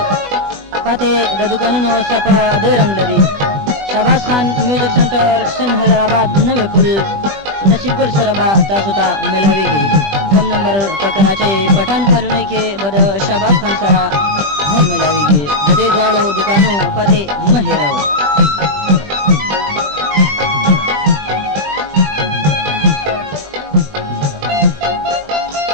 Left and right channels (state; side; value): late; left; 20 ms